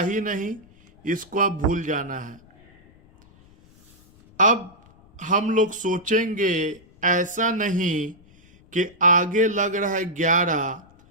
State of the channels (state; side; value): noise; left; rumble, 27 dB below the sound